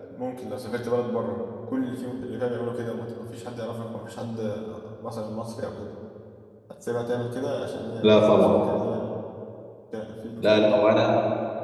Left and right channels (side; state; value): both; identical; correlation 1.00